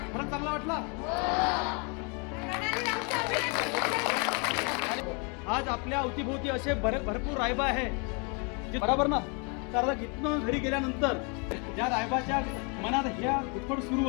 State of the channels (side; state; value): right; quieter; 34.3 dB